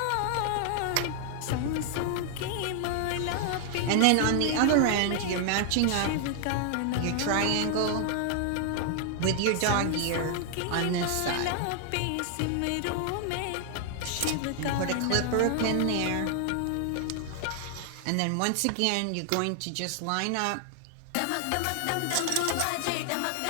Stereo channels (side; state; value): both; different; correlation 0.00